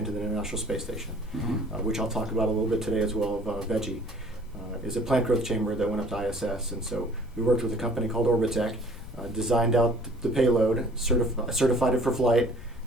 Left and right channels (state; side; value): noise; left; rumble, 16 dB below the sound